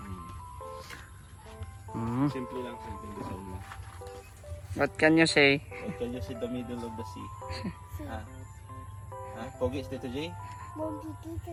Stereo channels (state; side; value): identical; both; correlation 1.00